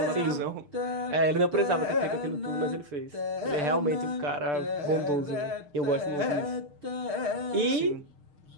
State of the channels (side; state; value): left; late; 6.8 ms